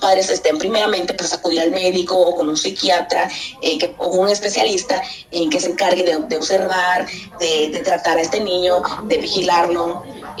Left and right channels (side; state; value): both; identical; correlation 1.00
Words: primeramente, pues acudir al médico o con un psiquiatra o un especialista que se encargue de observar, de tratar a este niño, de vigilarlo,